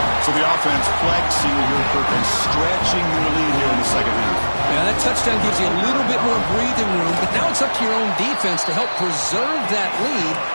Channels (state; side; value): inverted; both; correlation -1.00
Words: So the offense flexing here, Perkins, stretching their lead here in the second half. Yeah, that touchdown gives you a little bit more breathing room, but now it's up to your own defense to help preserve that lead